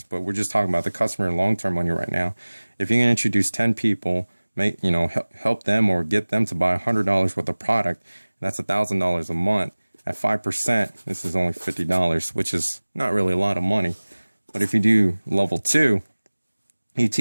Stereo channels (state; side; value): inverted; both; correlation -1.00